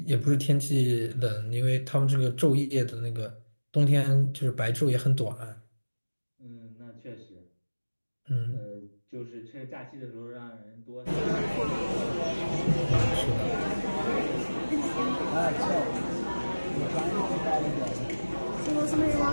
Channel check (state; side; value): inverted; both; correlation -1.00